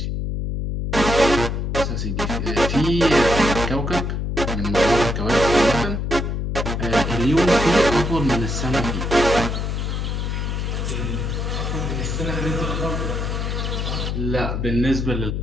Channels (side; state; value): left; noise; hum, 2 dB below the sound